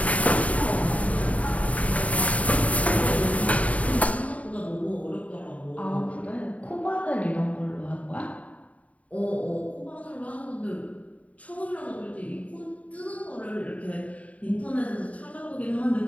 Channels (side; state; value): right; late; 0.068 ms